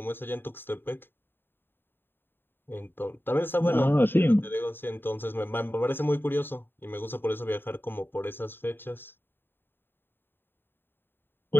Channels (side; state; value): right; late; 0.099 ms